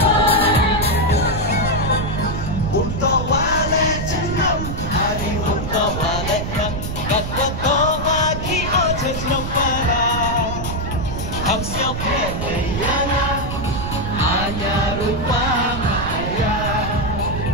Untuk wale jenam Hari untuk wale kak Kat wato waki ojo jenam parah Ham siap yana Hanya rupa maya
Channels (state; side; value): noise; right; rumble, 5 dB below the sound